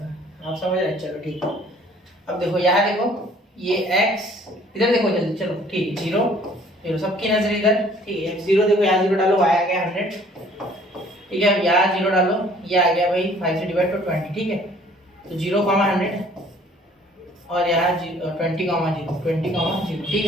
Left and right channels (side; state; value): both; normal; correlation 0.56